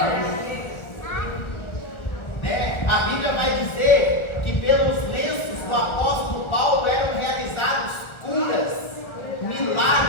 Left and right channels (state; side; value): late; right; 1.3 ms